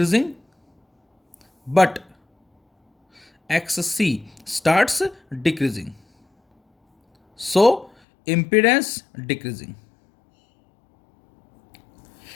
but XC starts decreasing, so impedance decreasing.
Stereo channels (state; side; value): drops out; right; at 7.9 s